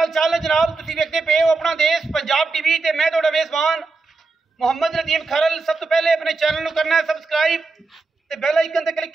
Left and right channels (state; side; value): quieter; left; 3.9 dB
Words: चाल है जनाब। तुसीं वेखदे पे हो अपना देश पंजाब टीवी ते मैं तुहाडा मेज़बान मोहम्मद नदीम खरल। सब तो पहले अपने चैनल को करना है सबसक्राइब ते बेल आइकन ते क्लिक